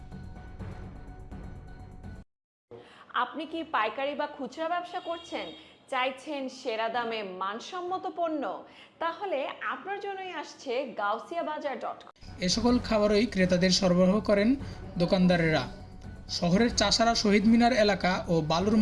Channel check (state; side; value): identical; both; correlation 1.00